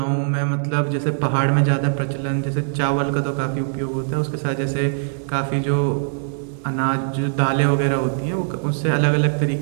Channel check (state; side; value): silent; left; digital silence